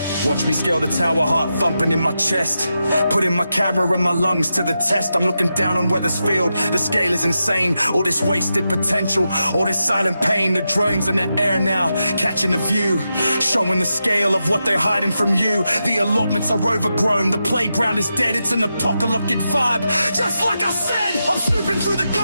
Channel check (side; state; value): both; inverted; correlation -0.88